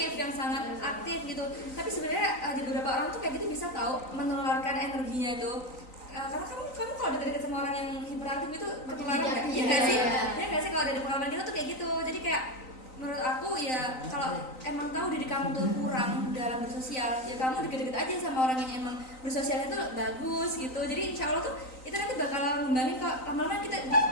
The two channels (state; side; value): late; right; 3.9 ms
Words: yang sangat aktif gitu. Tapi sebenarnya di beberapa orang tuh kayak gitu bisa tahu menularkan energinya itu. Karena kamu kalau deket-deket sama orang yang hiperaktif itu ketularan nggak? Iya nggak sih? Iya nggak sih kalau dari pengalaman kita tuh kayak gitu. Jadi kayak menurut aku ya kalau emang tahu diri kamu tuh kurang dalam bersosial, ya kamu deket-deket aja sama orang yang emang bersosialnya tuh bagus gitu. Jadi insya Allah tuh itu nanti bakal ngembangin kok. Lama-lama kita